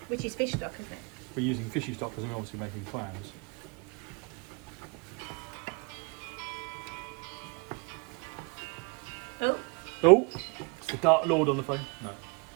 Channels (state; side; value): quieter; left; 31.1 dB